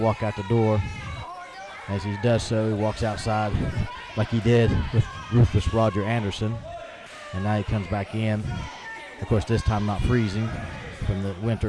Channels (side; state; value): both; identical; correlation 1.00